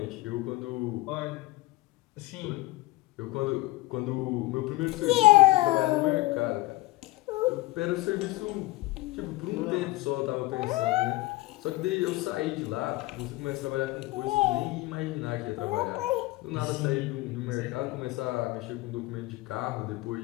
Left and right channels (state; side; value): quieter; right; 19.4 dB